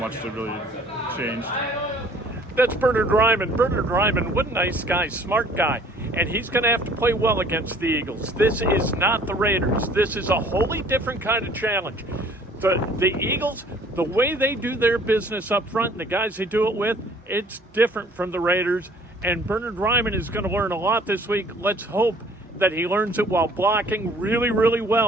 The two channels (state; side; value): normal; both; correlation 0.54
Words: it really changed. That's Bernhard Raimann. Bernhard Raimann, what a nice guy, smart guy. And he's going to have to play well against the Eagles. This is not the Raiders. This is a wholly different kind of challenge. The Eagles, the way they do their business up front and the guys they do it with, it's different from the Raiders. And Bernhard Raimann is going to learn a lot this week. Let's hope that he learns it while blocking really, really